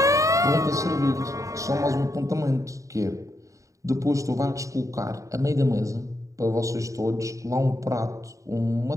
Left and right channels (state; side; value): late; left; 0.16 ms